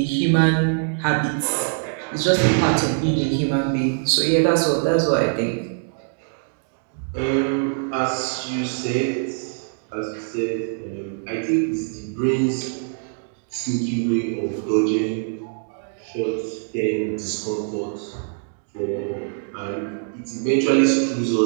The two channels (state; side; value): silent; left; digital silence